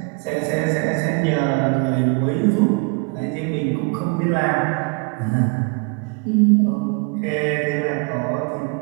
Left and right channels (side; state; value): left; quieter; 33.2 dB